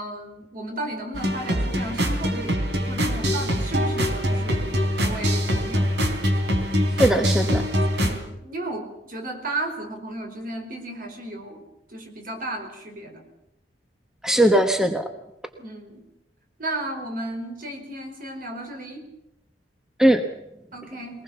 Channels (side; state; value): both; normal; correlation 0.71